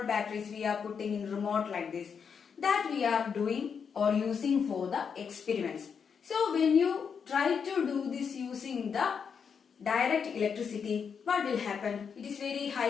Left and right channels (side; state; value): right; quieter; 6.5 dB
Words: batteries we are putting in remote like this, that we are doing or using for the experiments. So when you try to do this using the direct electricity, what will happen? It is very